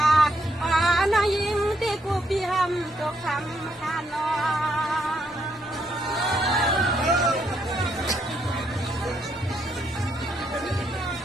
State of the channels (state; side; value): normal; both; correlation 0.75